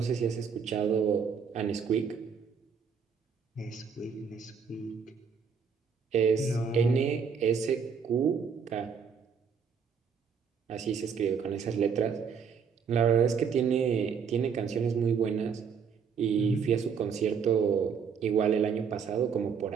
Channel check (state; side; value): quieter; left; 6.5 dB